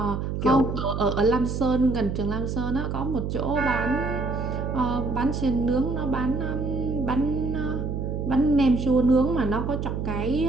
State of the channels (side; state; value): right; noise; hum, 3 dB below the sound